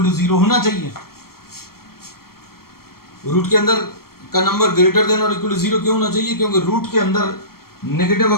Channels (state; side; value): late; right; 0.94 ms